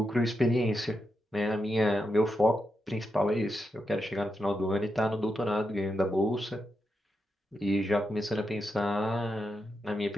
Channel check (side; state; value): both; normal; correlation 0.86